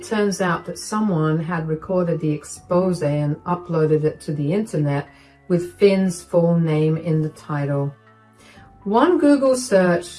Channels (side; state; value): both; identical; correlation 1.00